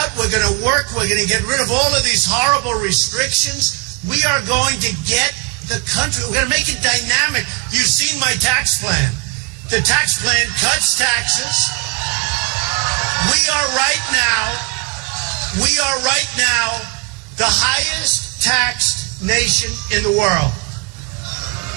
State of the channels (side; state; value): left; quieter; 28.6 dB